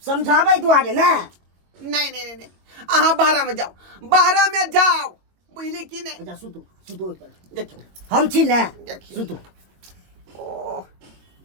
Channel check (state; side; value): late; left; 22 ms